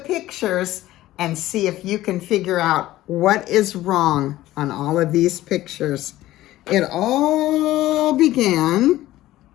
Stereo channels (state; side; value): quieter; right; 15.6 dB